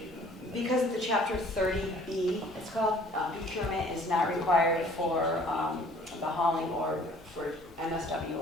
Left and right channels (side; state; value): both; normal; correlation 0.55